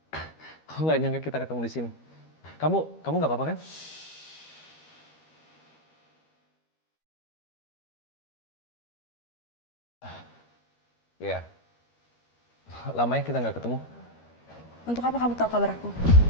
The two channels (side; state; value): right; late; 13 ms